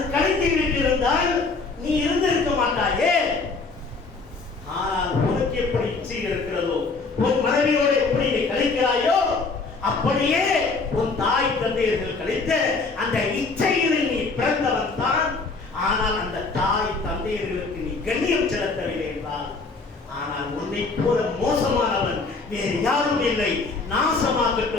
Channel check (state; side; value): quieter; right; 4.1 dB